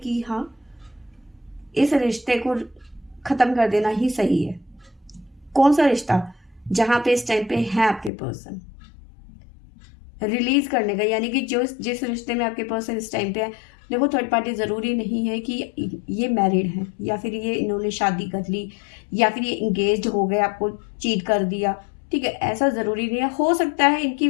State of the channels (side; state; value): right; drops out; at 8.1 s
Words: हाँ, इस रिश्ते को खत्म कर देना ही सही है। कौन सा रिश्ता? जहां पे इस टाइम पे है आपके पर्सन, रिलीज करने का, यानी कि जो जिस रिश्ते में आपके पर्सन इस टाइम पे है। देखो, थर्ड पार्टी जरूरी नहीं है कि ये मैरिड है, या फिर ये इन्होंने शादी कर ली, या फिर ये इंगेज हो गए, आपको चीट कर दिया, ठीक है। ऐसा जरूरी नहीं है। हो सकता है इनकी